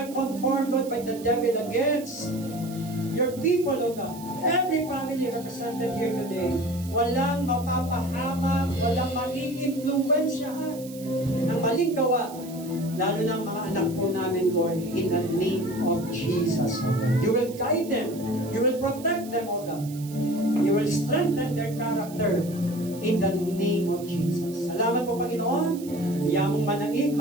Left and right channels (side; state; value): right; noise; hiss, 18 dB below the sound